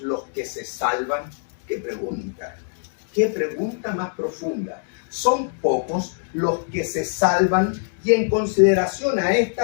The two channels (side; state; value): right; silent; digital silence